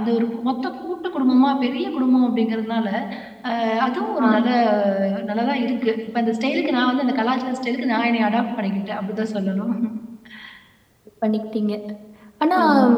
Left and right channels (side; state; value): both; identical; correlation 1.00